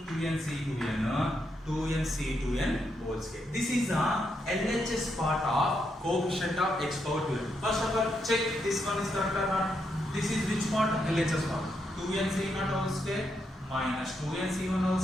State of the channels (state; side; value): normal; both; correlation 0.80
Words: 2n C2n, 2n C2n whole square. This is the LHS part of coefficient of x power 2n. First of all, check this one is correct or not. This is which part? LHS part. 2n C0 whole square minus 2n C1 whole